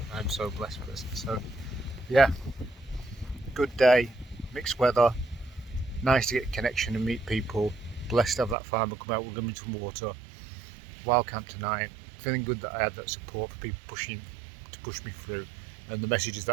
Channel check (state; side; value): drops out; left; at 8.6 s